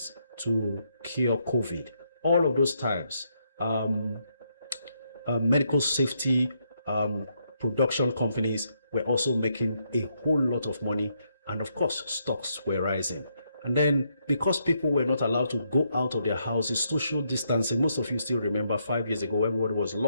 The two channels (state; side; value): inverted; both; correlation -0.76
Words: to cure COVID. All of those times, medical safety production companies were also making a whole lot of money, and of course, stocks were rising. And then, because people were not allowed to go out of their houses, social distancing, most of you still remember 5 years ago, everybody was